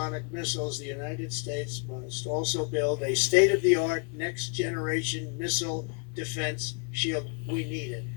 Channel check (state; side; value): quieter; right; 33.1 dB